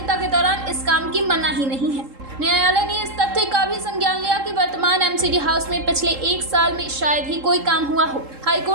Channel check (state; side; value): late; left; 3.7 ms